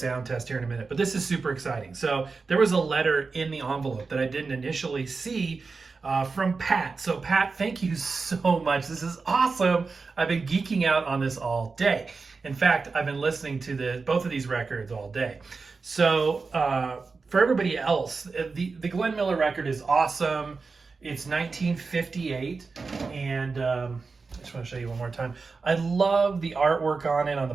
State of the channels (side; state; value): left; quieter; 4.4 dB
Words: test here in a minute, but this is super exciting. So there was a letter in the envelope that I didn't initially see from Pat. So Pat, thank you so much. This is awesome. I've been geeking out on this all day. In fact, I've been listening to both of these records all day. So for everybody else, the Glenn Miller record is awesome. It's 1958, and I just want to show you one more time. I love the artwork on it. On the